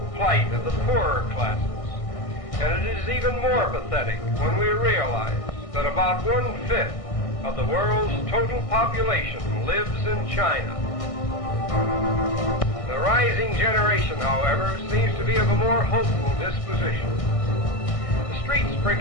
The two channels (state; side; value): late; right; 1.6 ms